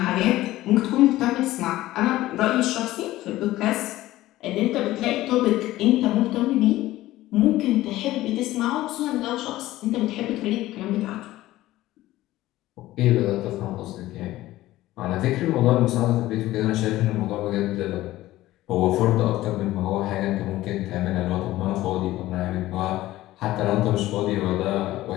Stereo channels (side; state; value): right; quieter; 16.2 dB